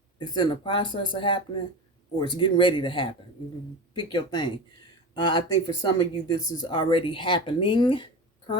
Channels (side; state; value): both; normal; correlation 0.27